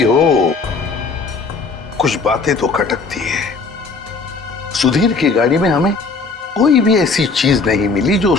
हो, कुछ बातें तो खटकती है। सुधीर की गाड़ी में हमें कोई भी ऐसी चीज नहीं मिली जो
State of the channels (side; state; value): right; quieter; 4.2 dB